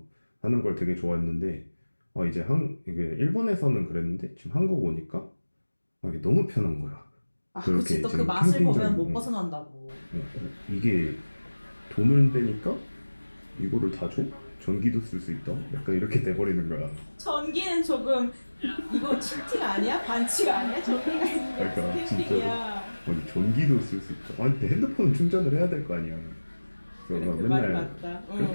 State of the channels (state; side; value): inverted; both; correlation -1.00